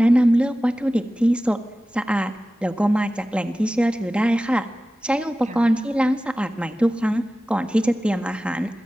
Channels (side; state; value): both; normal; correlation 0.96